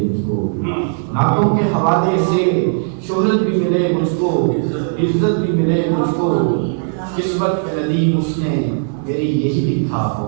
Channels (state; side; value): silent; left; digital silence